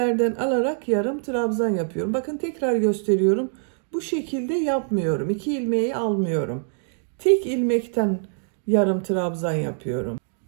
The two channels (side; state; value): left; silent; digital silence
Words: alarak yarım trabzan yapıyorum. Bakın tekrar gösteriyorum. Bu şekilde yapmıyorum. 2 ilmeği almıyorum. Tek ilmekten yarım trabzan yapıyorum.